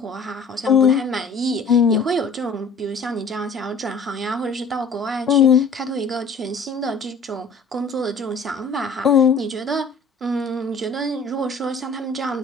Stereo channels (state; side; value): quieter; right; 3.9 dB